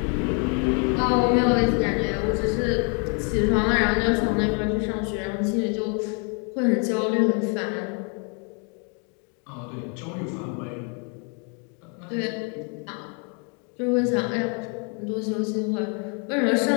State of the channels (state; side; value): quieter; right; 37.5 dB